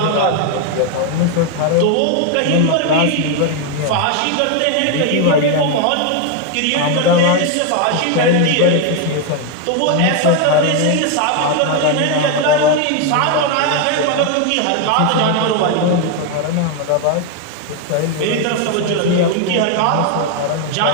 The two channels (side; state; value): both; different; correlation 0.01